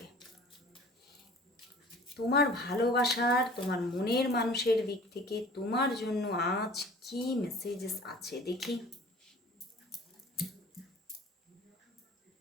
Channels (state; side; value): normal; both; correlation 0.46